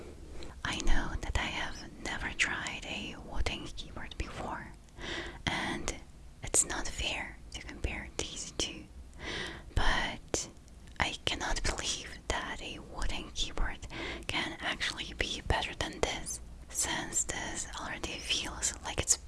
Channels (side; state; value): both; identical; correlation 1.00